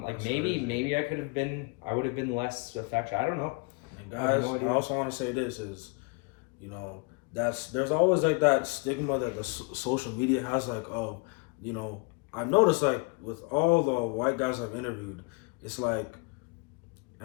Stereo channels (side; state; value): right; quieter; 31.1 dB